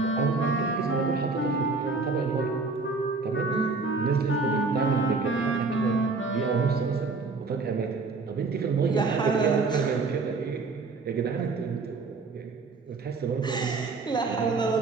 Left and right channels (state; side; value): quieter; left; 4.1 dB